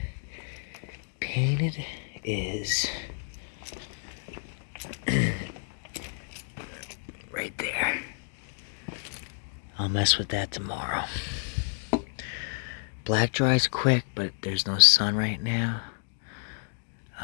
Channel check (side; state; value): right; silent; 58 dB below the other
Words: painted is right there. I'll mess with that tomorrow. Black dries quick, but there's no sun right now.